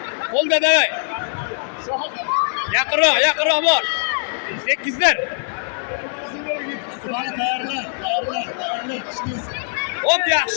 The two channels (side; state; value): right; silent; 63 dB below the other